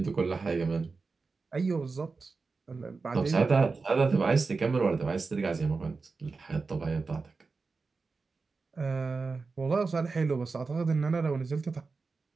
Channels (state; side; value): quieter; left; 4.3 dB